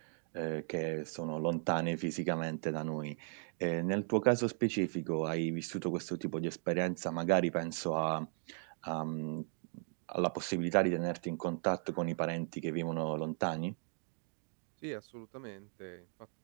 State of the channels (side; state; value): left; silent; 53 dB below the other